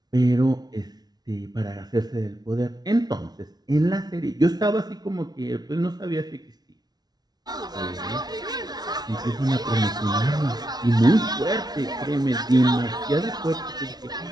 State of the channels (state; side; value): late; left; 0.19 ms